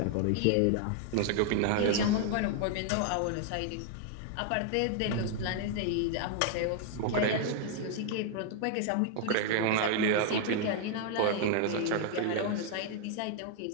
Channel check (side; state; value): both; different; correlation 0.00